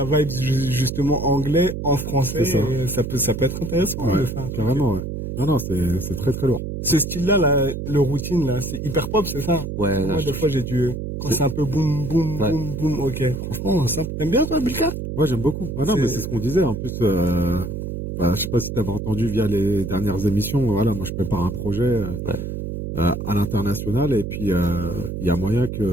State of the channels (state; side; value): noise; right; hum, 5 dB below the sound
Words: vibe justement anglais en français. C'est ça. Et ça peut être intéressant Ouais, de faire un truc. carrément, ouais. Non, c'est très très lourd. Ce style-là, le routine là, c'est hyper pop, c'est ça. ouais. Moi, des fois, j'ai dû quand c'est un peu boum boum Ouais. boum boum. Ok. Franchement, ça. T'aimes bien toi, Bilka? Moi, j'aime beaucoup. Ah non, C'est- mais c'est ce qu'on disait. En plus, je sais pas si t'avais entendu via les dernières émissions. Voilà, moi, je prépare un projet à l'international et puis il y a moyen